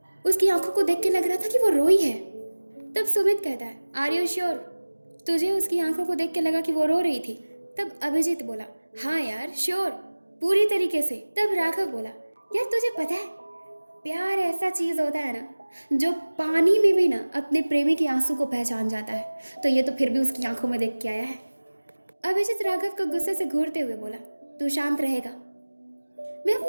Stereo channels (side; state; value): both; inverted; correlation -1.00